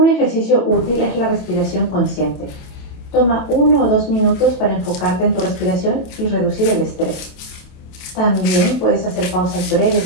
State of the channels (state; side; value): late; right; 28 ms